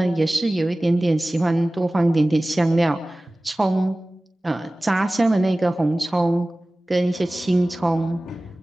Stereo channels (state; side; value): normal; both; correlation 0.98